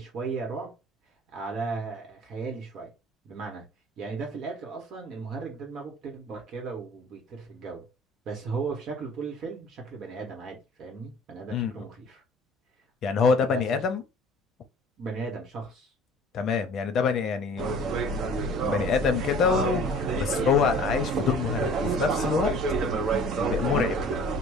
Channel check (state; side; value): normal; both; correlation 0.48